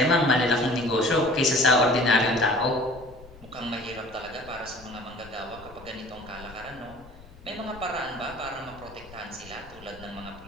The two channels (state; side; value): noise; left; rumble, 20 dB below the sound